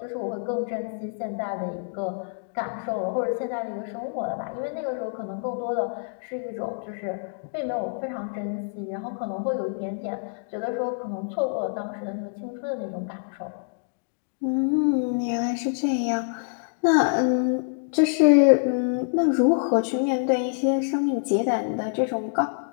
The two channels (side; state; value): right; silent; digital silence